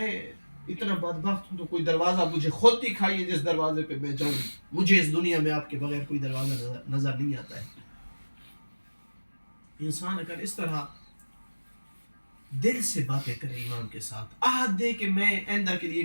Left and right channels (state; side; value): inverted; both; correlation -1.00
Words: اتنا بدبخت ہوں تو کوئی دروازہ مجھے خود دکھائیے جس دروازے پہ میں جاؤں. مجھے اس دنیا میں آپ کے بغیر کوئی دروازہ نظر نہیں آتا ہے. انسان اگر اس طرح دل سے باتیں کرے امام کے ساتھ, عہد دے کہ میں آئندہ کے